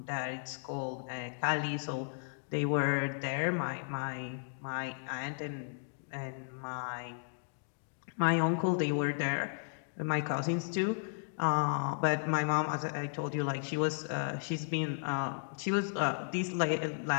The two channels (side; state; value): right; silent; digital silence